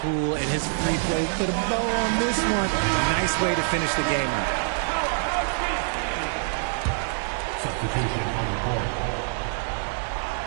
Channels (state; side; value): silent; left; 56 dB below the other